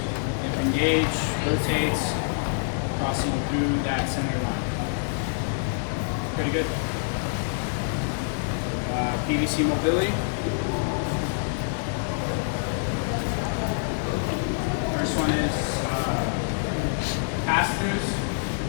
It engage, rotates, crossing through that center line. Pretty good. PVC mobility. First one is pass-throughs.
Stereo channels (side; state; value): right; silent; digital silence